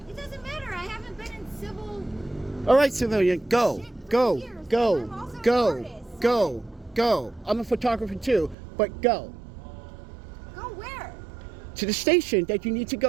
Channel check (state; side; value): drops out; left; at 8.6 s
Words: It doesn't matter. I haven't been in civil. All right, civilian, go, Shit, go, for years. go, I'm also an go, artist. go, go. I'm a photographer too, but go Go where? to the station that you need to